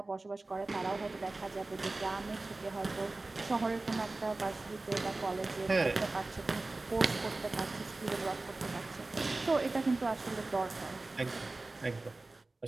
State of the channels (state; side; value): quieter; left; 3.2 dB